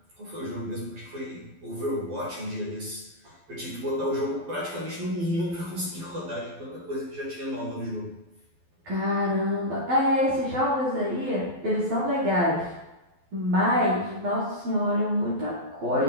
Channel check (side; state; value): left; late; 12 ms